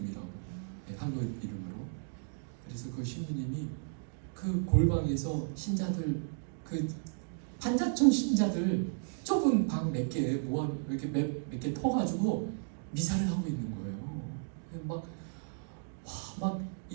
네, 한국 이름으로. 그래서 그 신부님이 그 골방에서 신자들, 그 판자촌 신자들 좁은 방 몇 개 모아 이렇게 몇 개 터가지고 미사를 하고 있는 거예요. 막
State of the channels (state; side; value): silent; left; digital silence